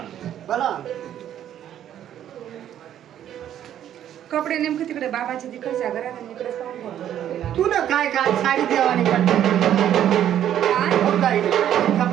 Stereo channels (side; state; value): left; quieter; 10.8 dB